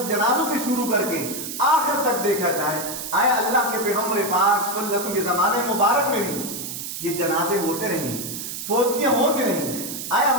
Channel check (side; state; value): right; noise; hiss, 7 dB below the sound